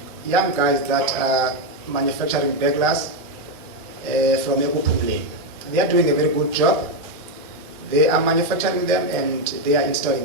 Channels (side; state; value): both; normal; correlation 0.04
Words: young guys that are manufacturing beglars from Ekupumle. They are doing a very good job. They are manufacturing them and they are